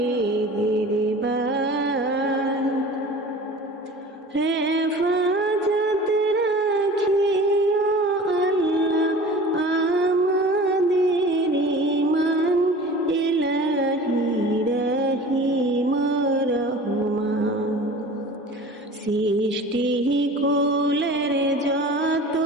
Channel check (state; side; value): normal; both; correlation 0.40